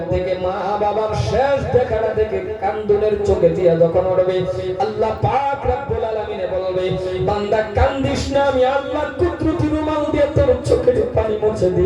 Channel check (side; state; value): both; identical; correlation 1.00